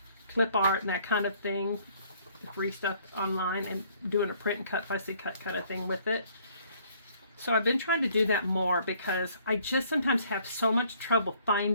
clip art and that kind of thing, free stuff online, and doing a print and cut, fussy cut kind of thing with it. So I've been trying to do that more because I just sometimes have so much trouble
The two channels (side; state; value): both; inverted; correlation -0.61